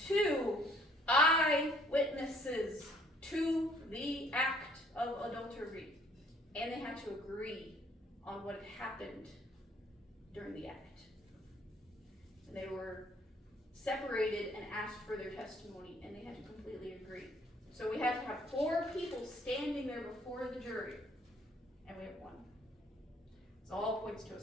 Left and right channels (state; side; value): normal; both; correlation 0.61